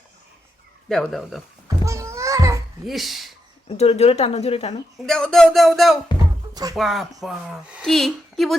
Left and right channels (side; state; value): both; normal; correlation 0.83